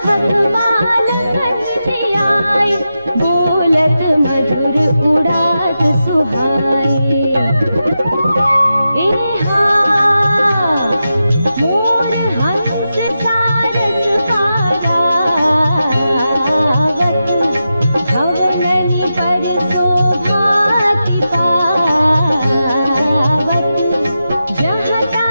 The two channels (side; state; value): both; inverted; correlation -0.90